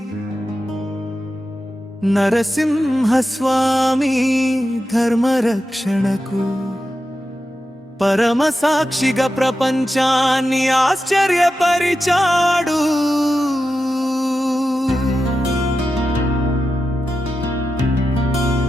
నరసింహస్వామి ధర్మరక్షణకు పరమ సాక్షిగా ప్రపంచాన్ని ఆశ్చర్యపరిచాడు.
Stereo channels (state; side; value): normal; both; correlation 0.90